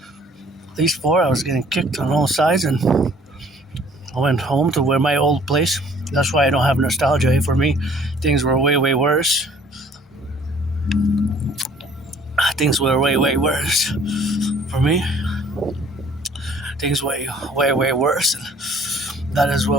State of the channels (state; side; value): normal; both; correlation 0.56